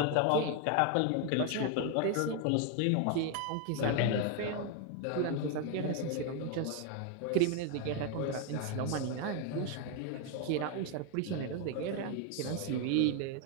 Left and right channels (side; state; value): both; different; correlation 0.01